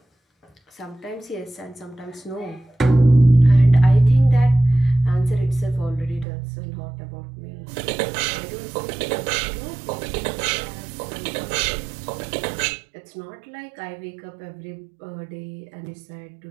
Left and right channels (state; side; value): drops out; left; at 6.2 s